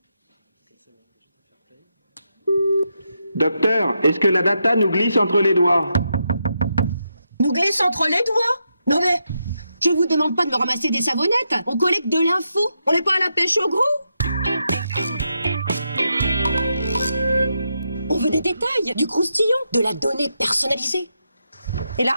Docteur, est-ce que la data nous glisse entre les doigts? Nous glisse entre les doigts? Non mais, je vous demande pas de me ramasser des savonnettes. On collecte de l'info. On n'est pas à la pêche au gros. On veut des détails, du croustillant, de la donnée personnalisée. Et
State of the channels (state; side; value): inverted; both; correlation -0.83